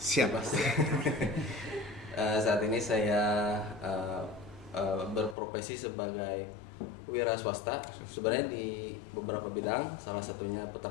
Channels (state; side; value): drops out; right; at 5.4 s